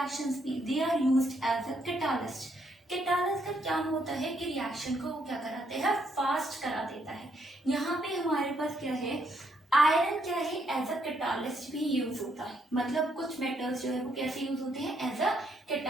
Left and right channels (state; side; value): normal; both; correlation 0.74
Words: में they are used as a catalyst. Catalyst का क्या होता है कि रिएक्शन को वो क्या कराते हैं, फास्ट करा देता है। यहाँ पे हमारे पास क्या है, आयरन क्या है, एज अ कैटालिस्ट भी यूज होता है। मतलब कुछ मेटल्स जो है वो कैसे यूज होते हैं, एज अ